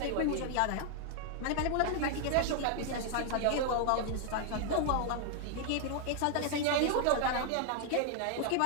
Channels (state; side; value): different; both; correlation 0.00